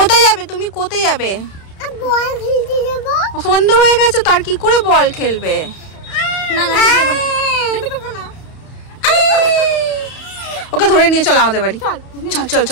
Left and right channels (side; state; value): right; late; 31 ms